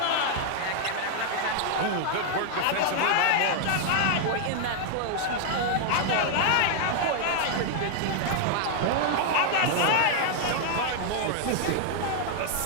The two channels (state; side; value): different; both; correlation 0.00